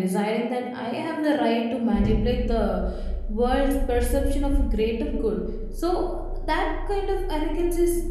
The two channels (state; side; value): identical; both; correlation 1.00